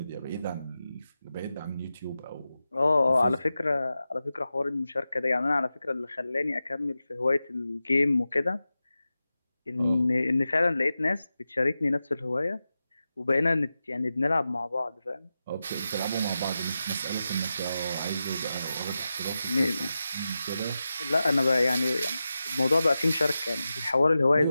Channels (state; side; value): inverted; both; correlation -0.92